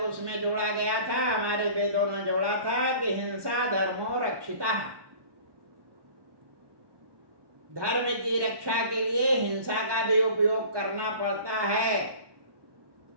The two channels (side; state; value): left; late; 1.2 ms